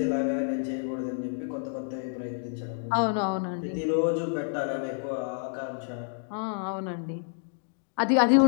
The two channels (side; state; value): right; silent; digital silence